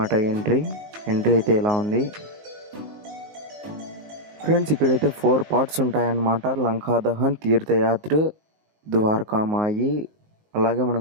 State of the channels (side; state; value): left; late; 19 ms